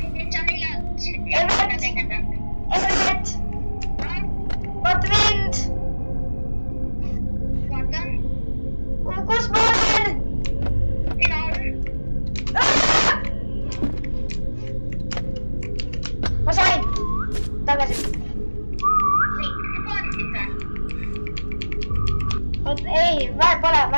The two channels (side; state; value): both; inverted; correlation -1.00